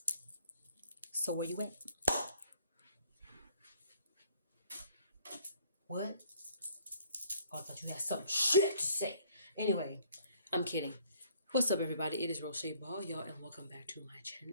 So where you at? What? Oh, I thought you had some shit to say. Anyway, I'm kidding. What's up, everybody? It is Roche Ball, y'all, and welcome back to my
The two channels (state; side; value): inverted; both; correlation -0.59